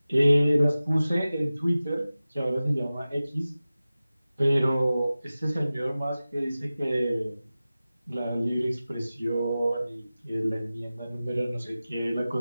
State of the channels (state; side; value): inverted; both; correlation -0.96